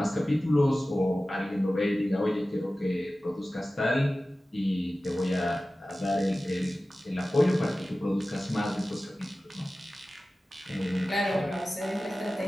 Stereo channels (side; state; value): both; normal; correlation 0.96